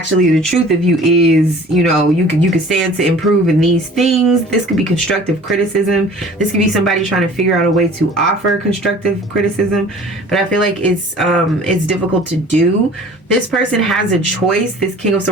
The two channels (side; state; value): both; normal; correlation 0.47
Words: the truth of you is, you know, you could stand to improve in these things. This could be constructive criticism. This could be somebody trying to figure out a way to offer constructive criticism, but I feel like it's difficult to do. This person has a choice, this King of